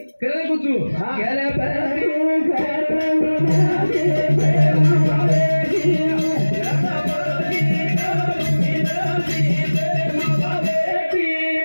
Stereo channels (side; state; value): both; inverted; correlation -1.00